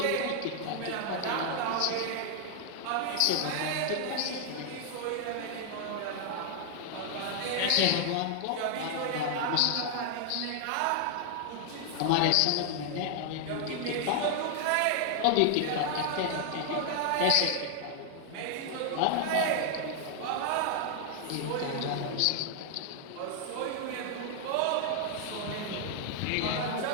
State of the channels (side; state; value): both; different; correlation 0.00